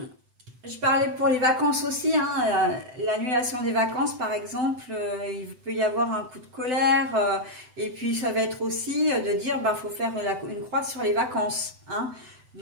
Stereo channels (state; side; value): late; left; 7.9 ms